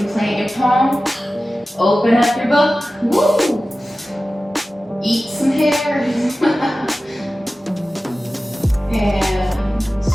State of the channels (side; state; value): both; normal; correlation 0.95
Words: plant your palm, open up your book, woo! Eat some hair. And